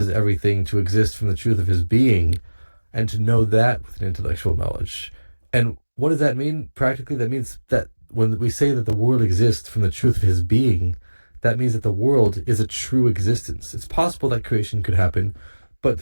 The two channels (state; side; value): inverted; both; correlation -1.00